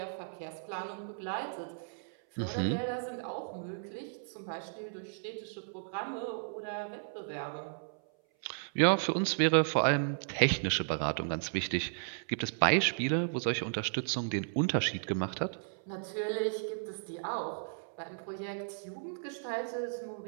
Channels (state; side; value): silent; left; 55 dB below the other